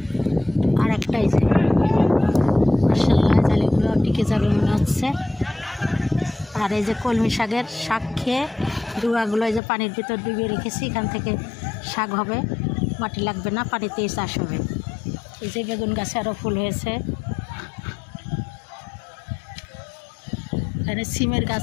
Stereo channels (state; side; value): drops out; right; at 9.6 s